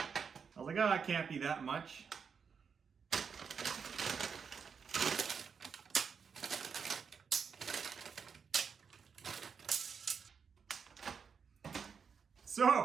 I was like, oh, it can't be that much.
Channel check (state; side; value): quieter; left; 6.2 dB